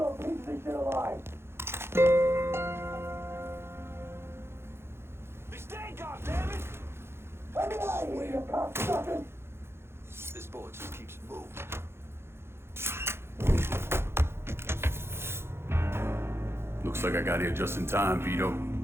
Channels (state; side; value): late; left; 0.12 ms